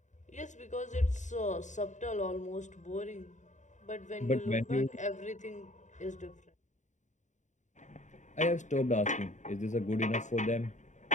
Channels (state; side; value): late; right; 0.35 ms